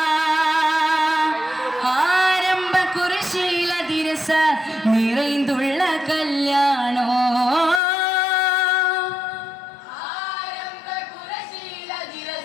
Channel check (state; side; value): drops out; right; at 7.8 s